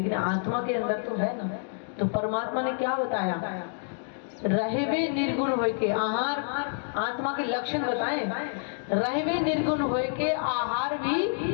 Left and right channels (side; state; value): right; silent; digital silence